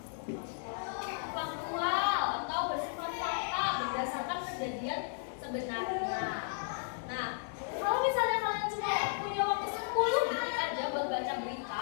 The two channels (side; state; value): right; silent; digital silence